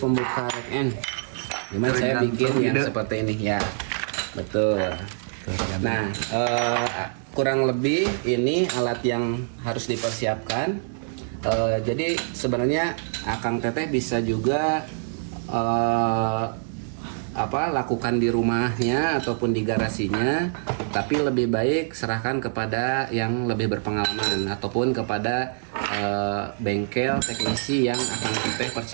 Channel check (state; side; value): silent; left; digital silence